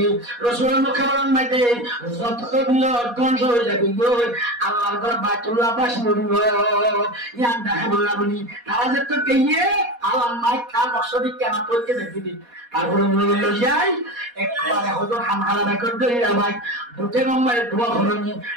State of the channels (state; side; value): late; left; 4.2 ms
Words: রাসূলের মোকাবেলা মাঝে যত দিও ধ্বংস হয়ে যাবে গো আল্লাহর ঘর বাইতুল্লাহ বাস নড়িব ইয়ান দেখা বললা বলি তারা যে তো কইয়ে আল্লাহ মাই কা মকসদি কেন তোকে দেখিবি তারপরে বললো যাই একবারে হজর হামহারা বেকর ধরে ভাই দুটো নম্বরে দোয়া হরনি